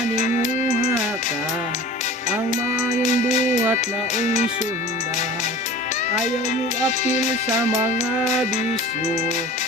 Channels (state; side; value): normal; both; correlation 0.40